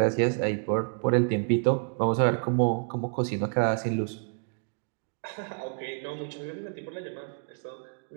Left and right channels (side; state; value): left; silent; 59 dB below the other